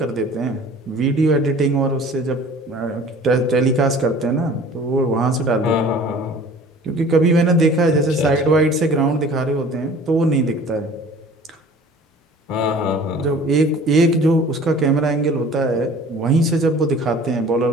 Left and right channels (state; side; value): normal; both; correlation 0.47